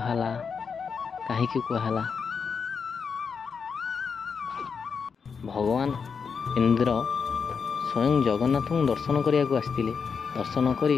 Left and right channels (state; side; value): quieter; right; 5.9 dB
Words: कहीं कहला? भगवान इंद्र स्वयं जगन्नाथ दर्शन करने को आसते। दर्शन